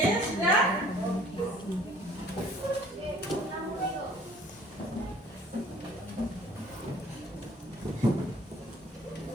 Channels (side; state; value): both; normal; correlation 0.55